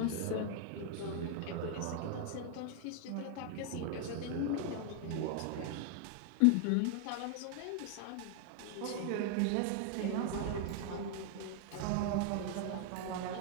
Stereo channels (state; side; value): different; both; correlation 0.00